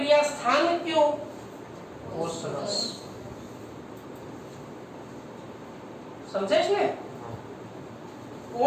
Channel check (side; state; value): both; identical; correlation 1.00